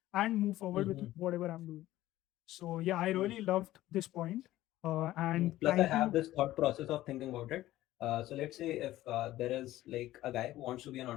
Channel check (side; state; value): right; quieter; 15.3 dB